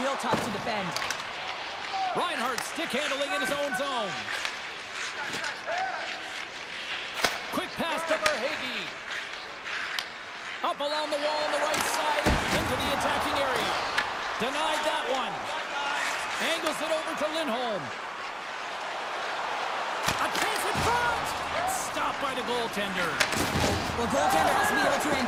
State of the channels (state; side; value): identical; both; correlation 1.00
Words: tough to defend. Reinhardt stick handling in his own zone. Quick pass to Verhaeghe. Up along the wall on the right side into the attacking area. Denied that one. Angles it over to Lindholm. A chance in front. Stopped by the goaltender. Well, goaltender has to be able to